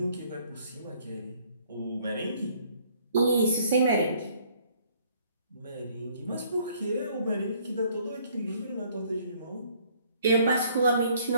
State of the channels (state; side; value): inverted; both; correlation -0.61